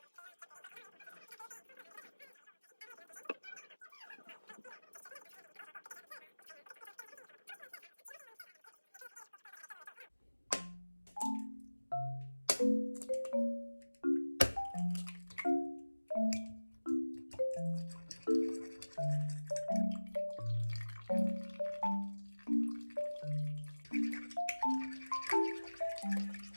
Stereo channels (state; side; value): inverted; both; correlation -1.00